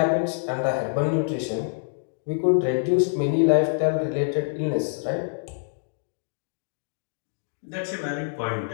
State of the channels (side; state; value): right; silent; digital silence